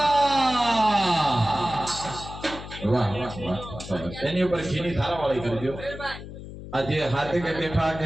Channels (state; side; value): noise; left; hum, 12 dB below the sound